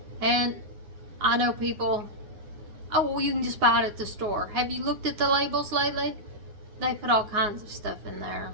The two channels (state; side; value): late; left; 9.5 ms